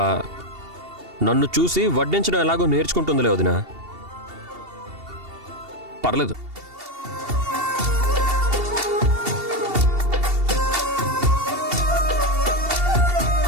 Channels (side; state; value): left; late; 2.7 ms